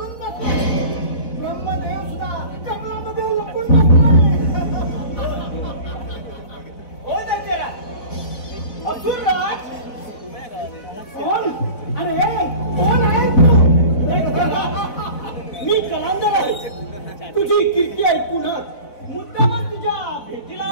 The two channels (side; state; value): right; late; 4.0 ms